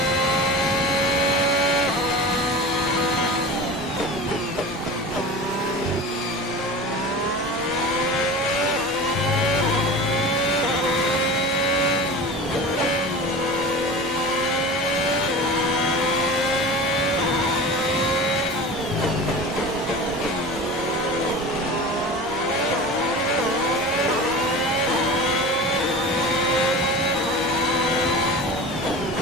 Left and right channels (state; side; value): normal; both; correlation 0.33